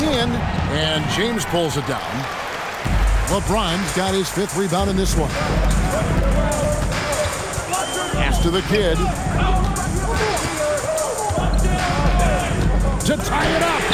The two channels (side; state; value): both; identical; correlation 1.00